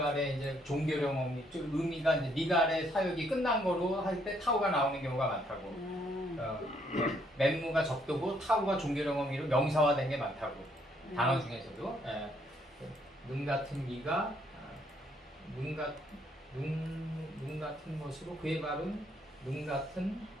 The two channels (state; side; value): normal; both; correlation 0.70